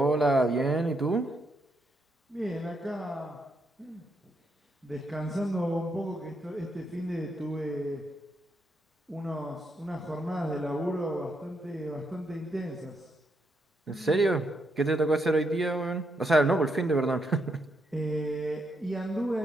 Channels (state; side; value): normal; both; correlation 0.79